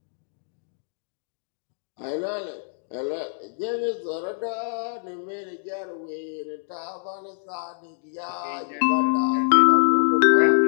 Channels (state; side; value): silent; right; digital silence